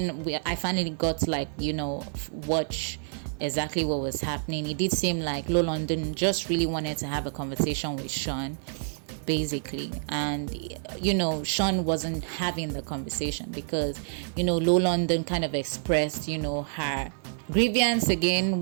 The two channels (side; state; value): left; silent; 59 dB below the other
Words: I finally got to watch exactly what was happening, it did seem like lolondon just really wanted to have a conversation with Sean, basically. And Sean wasn't having the conversation because lolondon kind of expressed her grievance